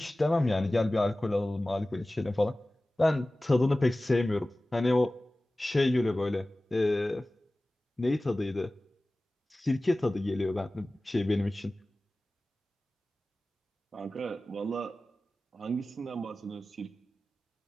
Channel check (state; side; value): normal; both; correlation 0.97